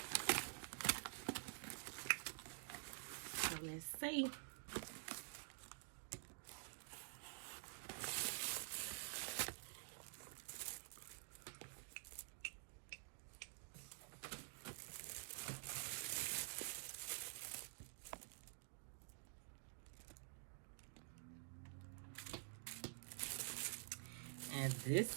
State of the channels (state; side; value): silent; left; digital silence